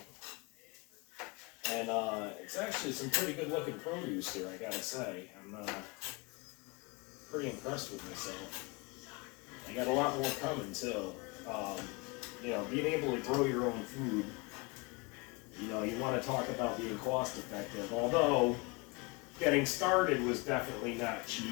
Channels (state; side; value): quieter; right; 27.7 dB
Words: And it's actually some pretty good looking produce here, I gotta say. I'm pretty impressed with myself. I got a lot more coming too. Being able to grow your own food, you want to talk about being cost effective. Although, getting started was definitely not